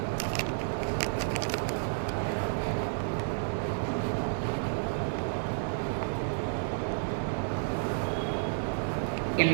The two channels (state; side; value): silent; left; 57 dB below the other